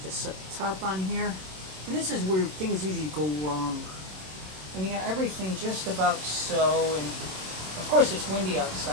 just set the top on here. And this is where things usually go wrong. And you got everything just about so. And of course, it's windy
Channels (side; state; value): left; late; 27 ms